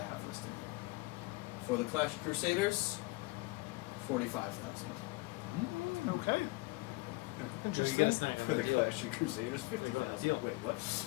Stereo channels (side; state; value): right; quieter; 23.4 dB